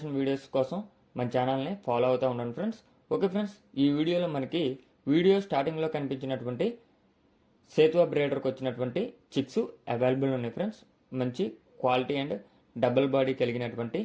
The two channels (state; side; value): identical; both; correlation 1.00